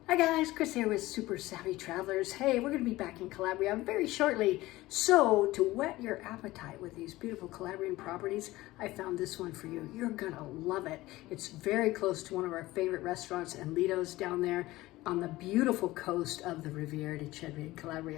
Hi guys, Chris here with Super Savvy Travelers. Hey, we're going to be back in Calabria very shortly. So to whet your appetite with these beautiful Calabrian properties, I found this one for you. You're going to love it. It's very close to one of our favorite restaurants and Lido's down there on the beautiful coast of the Riviera di Cedri in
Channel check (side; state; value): right; quieter; 18.1 dB